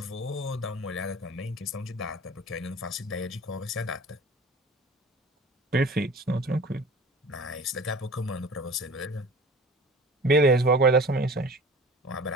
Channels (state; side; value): normal; both; correlation 0.42